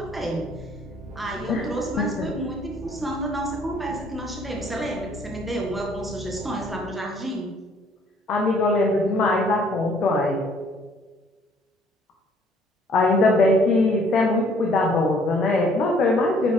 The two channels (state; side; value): normal; both; correlation 0.61